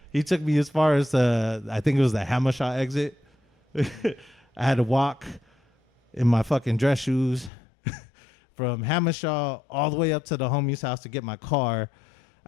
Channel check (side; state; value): right; drops out; at 7.5 s